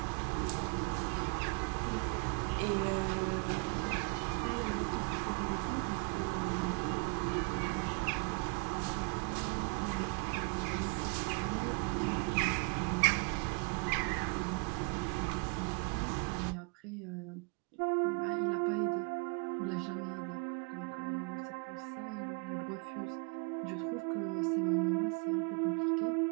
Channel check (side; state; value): left; quieter; 34.5 dB